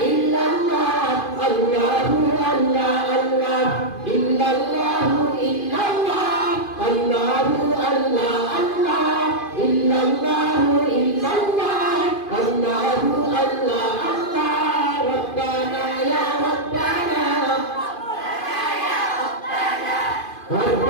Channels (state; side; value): late; right; 2.5 ms